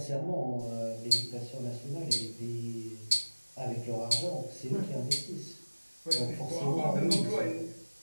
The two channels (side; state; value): both; inverted; correlation -1.00